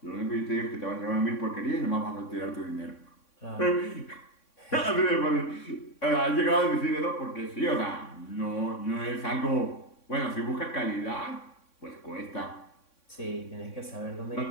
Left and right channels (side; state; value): right; late; 3.6 ms